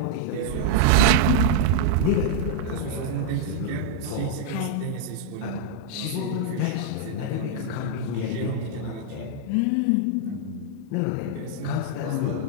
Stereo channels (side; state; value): both; different; correlation -0.01